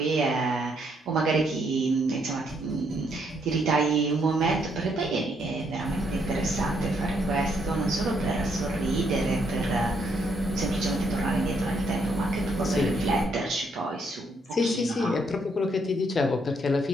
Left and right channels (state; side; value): normal; both; correlation 0.73